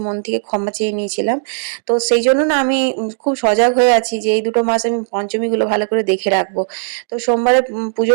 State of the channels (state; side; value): silent; left; digital silence